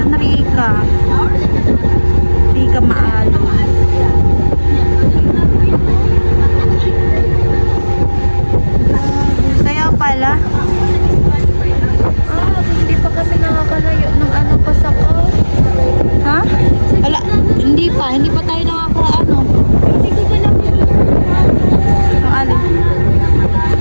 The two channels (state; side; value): inverted; both; correlation -1.00